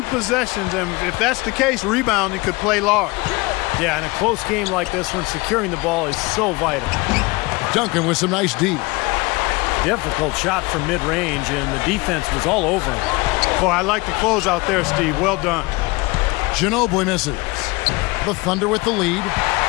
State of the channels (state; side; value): quieter; right; 24.3 dB